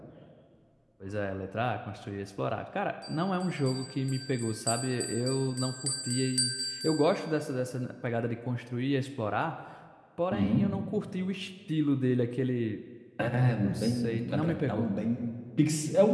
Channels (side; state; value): both; identical; correlation 1.00